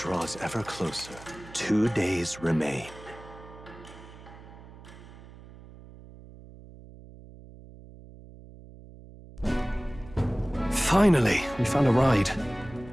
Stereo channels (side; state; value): right; noise; hum, 19 dB below the sound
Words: ever closer. 2 days remain. Finally, we found a ride.